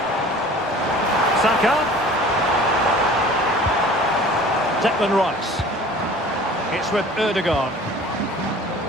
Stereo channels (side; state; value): both; normal; correlation 0.46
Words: Saka. Declan Rice. It's with Ødegaard.